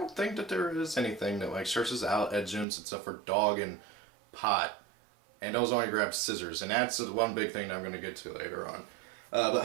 think that there is anything that, like, searches out Edgemps except for Dog and Pot, and those only grab Scissors, and that's the one big thing that I'm going to get to later on. But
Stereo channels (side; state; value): left; drops out; at 2.7 s